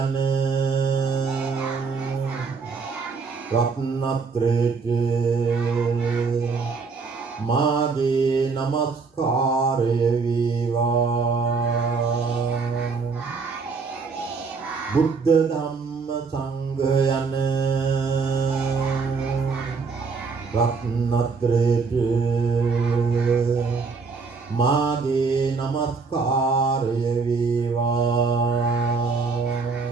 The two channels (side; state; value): left; quieter; 4.8 dB